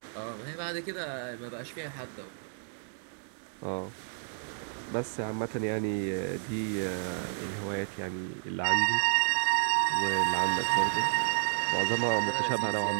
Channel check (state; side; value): silent; left; digital silence